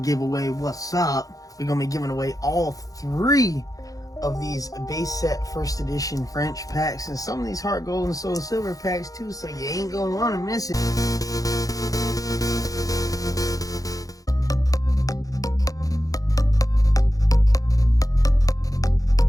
what's up? We're gonna be giving away all 3 of these base set first edition French packs and some of these heart gold and soul silver packs too, so you ain't gonna want to miss it.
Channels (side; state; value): right; late; 0.17 ms